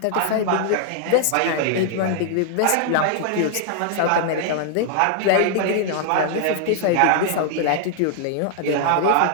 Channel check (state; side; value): different; both; correlation 0.00